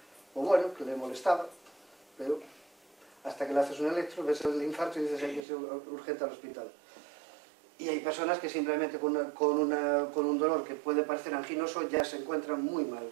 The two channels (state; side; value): drops out; left; at 5.5 s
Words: o bueno, que le molestaba, pero hasta que le haces un electro, ves el infarto y dices hay que ser urgente al hospital. Y hay personas que simplemente con un dolor que puede parecer anginoso ya se encuentran muy mal